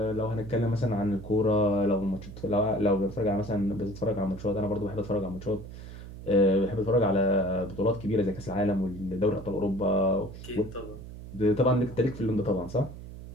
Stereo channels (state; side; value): noise; right; hum, 13 dB below the sound